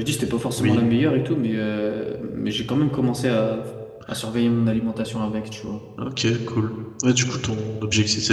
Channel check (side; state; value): both; identical; correlation 1.00